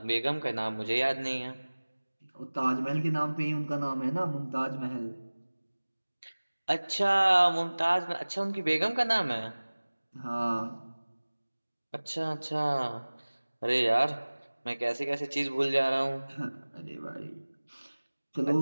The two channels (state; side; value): inverted; both; correlation -1.00